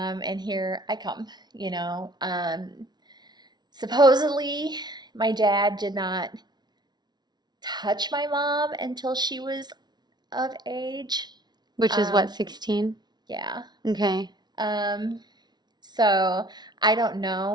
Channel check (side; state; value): left; late; 0.20 ms